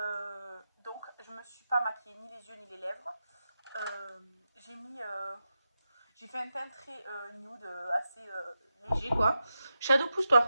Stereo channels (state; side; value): inverted; both; correlation -0.89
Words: donc, je me suis pas maquillée ni les yeux ni les lèvres. J'ai mis. J'ai fait un teint très nude, assez léger quoi. Shadow,